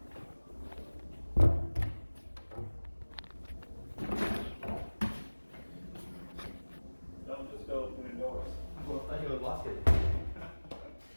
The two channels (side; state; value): both; inverted; correlation -1.00